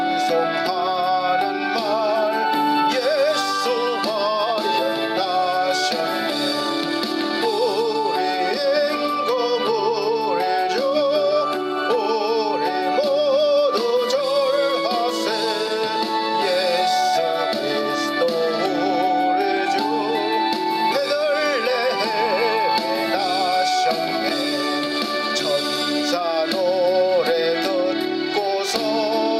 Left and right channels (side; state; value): both; identical; correlation 1.00